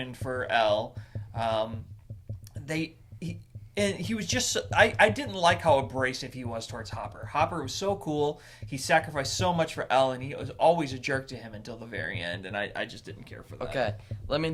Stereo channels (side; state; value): both; identical; correlation 1.00